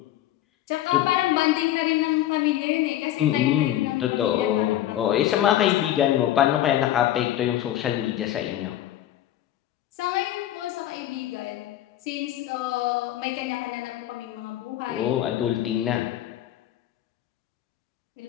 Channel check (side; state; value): right; quieter; 12.9 dB